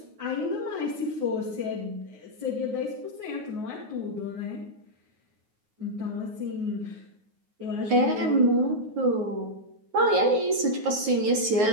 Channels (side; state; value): left; late; 9.5 ms